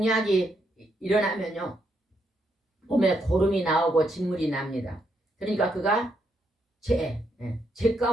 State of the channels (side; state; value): both; normal; correlation 0.77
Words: 일어나면요 몸에 고름이 나오고 진물이 납니다. 그러니까 그가 제